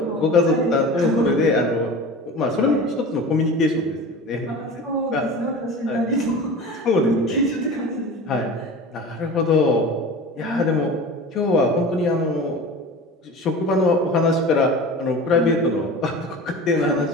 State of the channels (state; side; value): normal; both; correlation 0.35